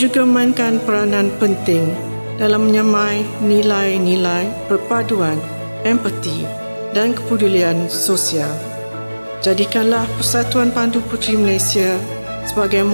memainkan peranan penting dalam menyamai nilai-nilai perpaduan, empati dan kepedulian sosial. Jadikanlah Persatuan Pandu Puteri Malaysia sebagai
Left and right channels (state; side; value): inverted; both; correlation -1.00